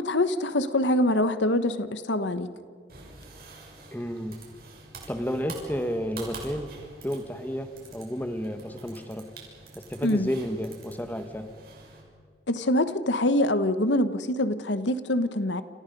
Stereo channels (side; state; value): both; normal; correlation 0.38